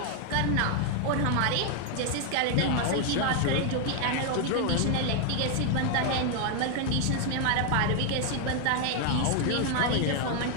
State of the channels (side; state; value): both; different; correlation 0.00